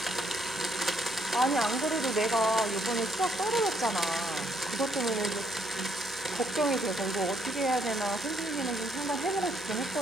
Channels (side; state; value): both; normal; correlation 0.71